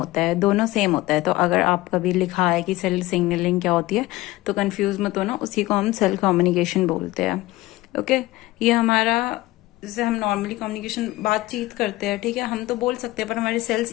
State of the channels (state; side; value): quieter; right; 18.5 dB